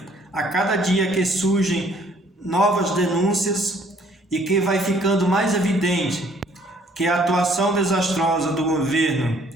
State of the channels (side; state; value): both; normal; correlation 0.60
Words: A cada dia que surgem novas denúncias e que vai ficando mais evidente que a atuação desastrosa do governo